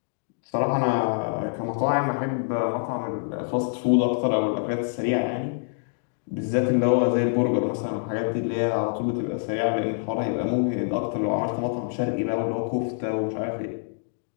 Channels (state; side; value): silent; right; digital silence